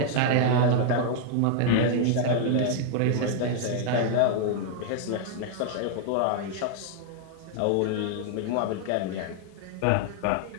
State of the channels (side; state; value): both; different; correlation 0.00